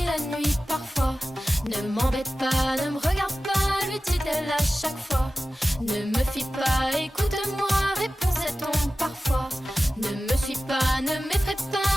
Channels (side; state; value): both; normal; correlation 0.95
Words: la nuit parfois. Ne m'embête pas, ne me regarde pas, lui dit-elle à chaque fois. Ne me fuis pas, écoute-moi, répond-on parfois. Ne me suis pas, ne m'effraie